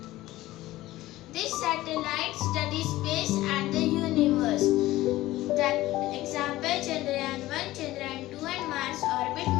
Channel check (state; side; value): quieter; right; 16.7 dB